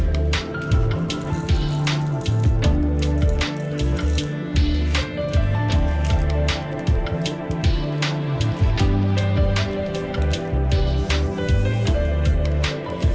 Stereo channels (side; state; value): both; identical; correlation 1.00